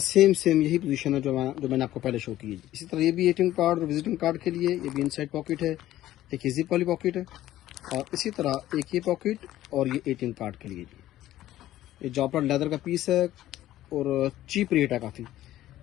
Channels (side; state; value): right; quieter; 14.1 dB